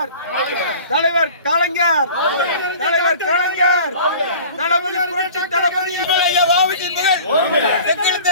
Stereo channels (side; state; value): both; inverted; correlation -0.43